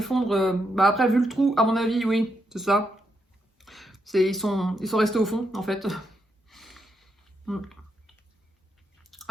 Après, vu le trou, à mon avis, oui, c'est ça. Ils sont restés au fond, en fait.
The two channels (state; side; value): normal; both; correlation 0.81